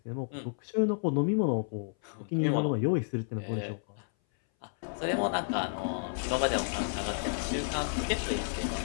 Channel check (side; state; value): right; silent; 57 dB below the other